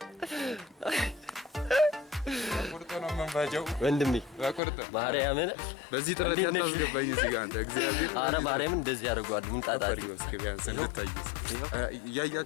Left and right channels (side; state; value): right; drops out; at 4.6 s